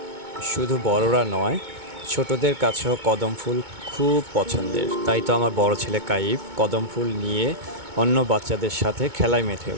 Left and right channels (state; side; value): late; left; 2.2 ms